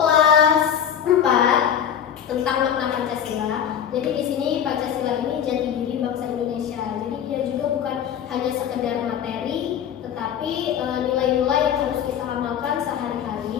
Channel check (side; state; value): right; quieter; 8.8 dB